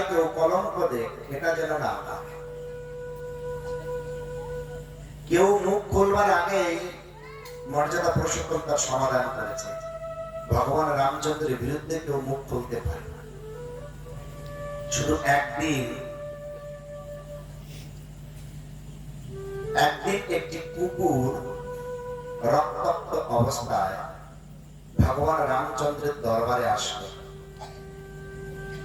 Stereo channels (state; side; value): identical; both; correlation 1.00